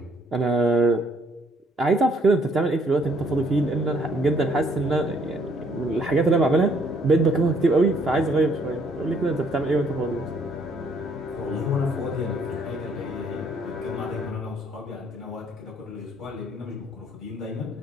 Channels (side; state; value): both; normal; correlation 0.66